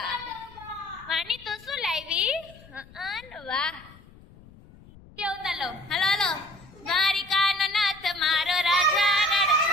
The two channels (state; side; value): noise; left; rumble, 22 dB below the sound